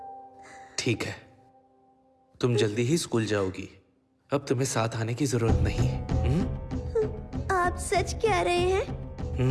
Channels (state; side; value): identical; both; correlation 1.00